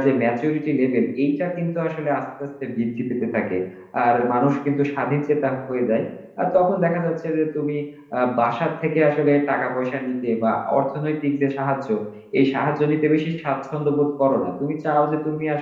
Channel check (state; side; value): identical; both; correlation 1.00